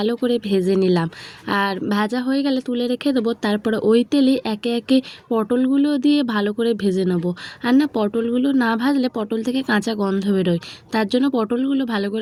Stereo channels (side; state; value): both; identical; correlation 1.00